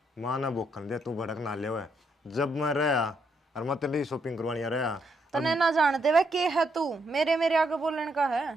माँ ना बोखन दे तू भड़क ना ले हुए जब मैं रहा और मैं तेरी शॉपिंग करवानी रहा तने ना जानते वह के है तू मेरे आगे बोलने का है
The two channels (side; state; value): both; normal; correlation 0.76